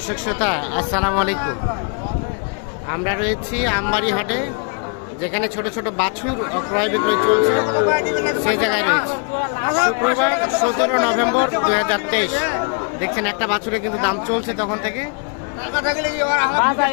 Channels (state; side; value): quieter; right; 38.0 dB